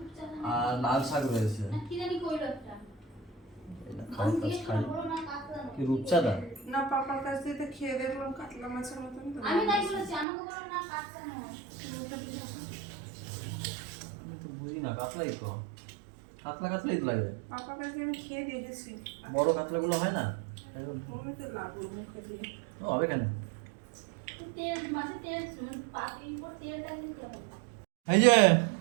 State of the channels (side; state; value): left; drops out; at 10.2 s